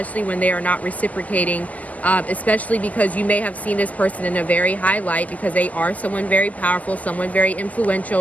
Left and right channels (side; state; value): right; late; 0.072 ms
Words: when they are not reciprocating, especially because you may have seen this person in a very high light, because they are someone very powerful, someone very